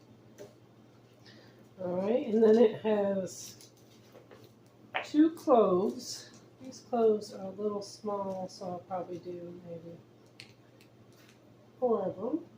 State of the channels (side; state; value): both; identical; correlation 1.00